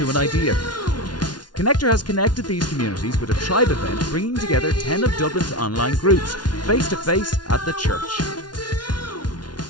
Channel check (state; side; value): late; right; 0.70 ms